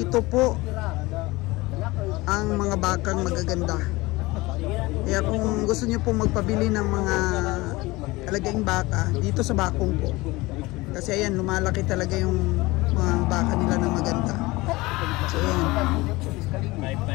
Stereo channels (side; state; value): right; quieter; 21.5 dB